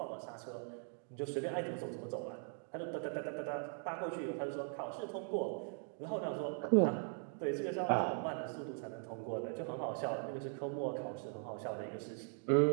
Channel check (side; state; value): left; silent; 51 dB below the other